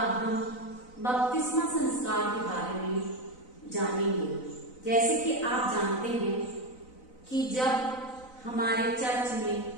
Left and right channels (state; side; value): late; right; 4.0 ms